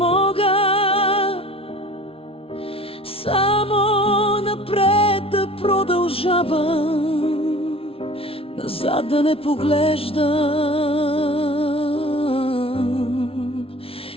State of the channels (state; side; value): late; right; 0.27 ms